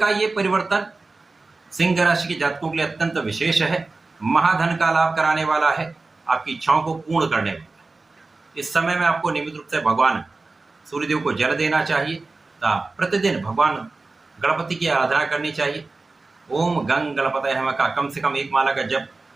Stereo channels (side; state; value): left; quieter; 3.6 dB